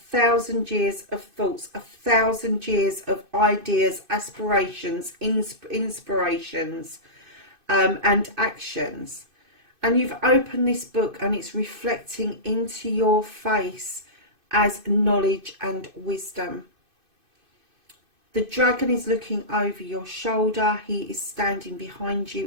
years of thoughts, 1,000 years of ideas, aspirations, inspirations, and actions. And you've opened this book and it's reflecting into your face as knowledge and wisdom. The dragon is looking over your shoulder. He is standing behind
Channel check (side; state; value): left; late; 2.5 ms